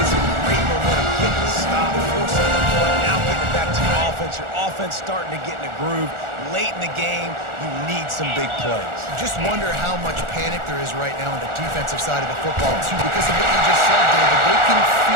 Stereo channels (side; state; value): left; late; 1.4 ms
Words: some great momentum, getting the stop, forcing the punt, now getting it back to your offense. Your offense starting to get in a groove. Late in the game, you need some big plays. Just wonder how much panic there is right now on the defensive side of the football, too, because of what you just said, David. They can